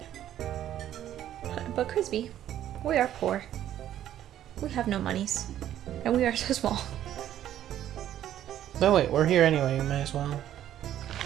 But Crispy, we are poor. We have no monies. And we are so small. No, wait, we're here anyway, you might as well.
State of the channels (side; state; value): left; quieter; 11.6 dB